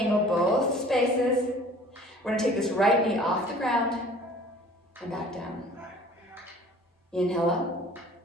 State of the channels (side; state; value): both; normal; correlation 0.49